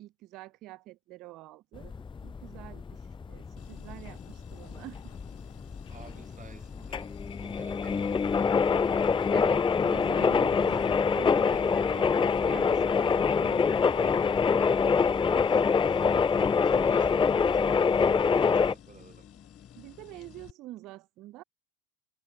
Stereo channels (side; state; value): right; quieter; 5.2 dB